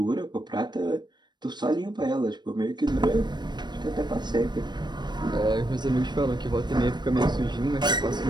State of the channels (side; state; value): left; late; 0.21 ms